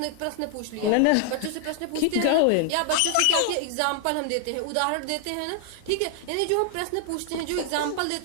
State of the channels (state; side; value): different; both; correlation 0.00